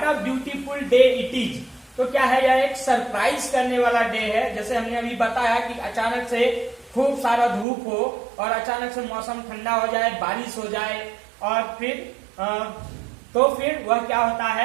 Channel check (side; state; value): left; drops out; at 7.7 s